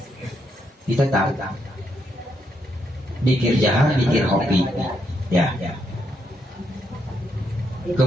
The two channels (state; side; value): normal; both; correlation 0.78